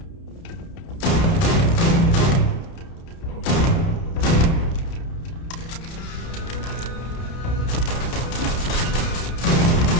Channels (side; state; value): right; late; 31 ms